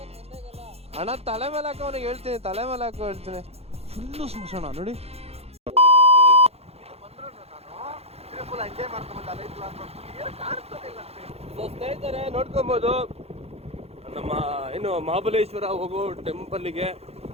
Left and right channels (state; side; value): late; left; 0.30 ms